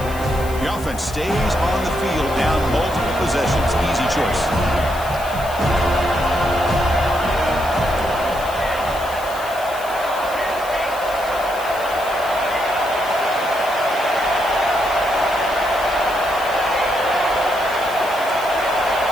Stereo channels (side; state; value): left; noise; hiss, 16 dB below the sound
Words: The offense stays on the field down multiple possessions. Easy choice.